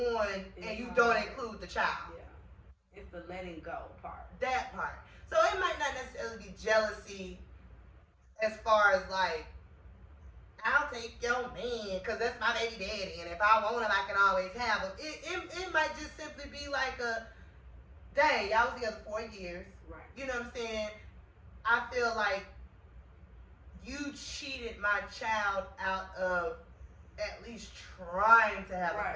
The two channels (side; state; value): both; identical; correlation 1.00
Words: and you don't include the child. Yeah. It's the letting go part. That part. So it might not necessarily be jealousy as far as like, I'll take your man because that's my baby daddy, and if I want him, I can always have him. It might just simply be like a, dang, y'all was together 4 years. Right. You know what I'm saying? I feel like you cheated my child out of at least trying to have a